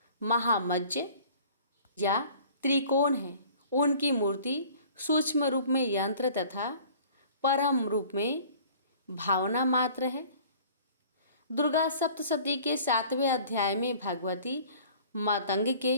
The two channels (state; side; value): inverted; both; correlation -0.49